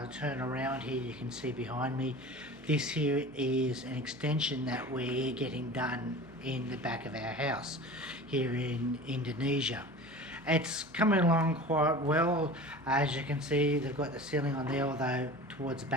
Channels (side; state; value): left; noise; hum, 25 dB below the sound